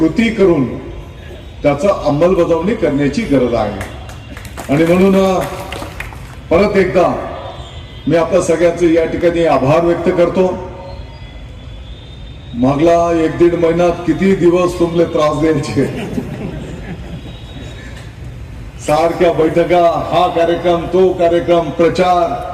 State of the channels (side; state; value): both; identical; correlation 1.00